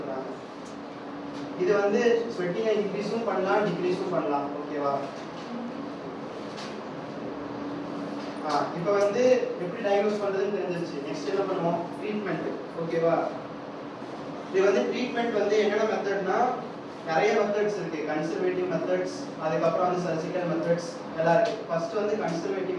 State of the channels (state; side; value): identical; both; correlation 1.00